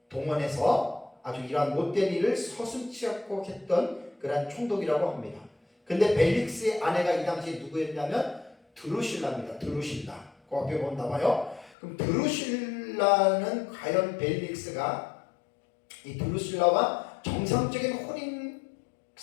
동원해서 아주 이러한 못된 일을 서슴지 않고 했던 그러한 총독이라고 합니다. 근데 벨릭스의 아내가 이 당시에 누구였냐면 드루실라입니다. 드루실라. 그 앞에 보면 나와요. 그럼 드루실라는 과연 벨릭스가 이 드루실라와 정상적인 혼인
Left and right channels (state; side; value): drops out; right; at 11.8 s